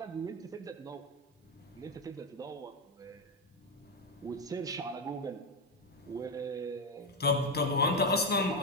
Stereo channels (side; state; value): both; normal; correlation 0.08